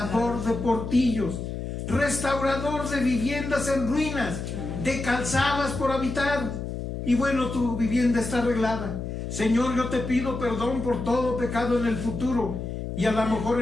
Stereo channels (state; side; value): noise; left; hum, 5 dB below the sound